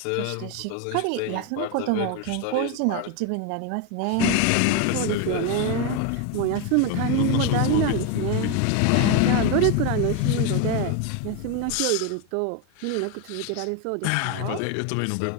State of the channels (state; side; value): different; both; correlation 0.02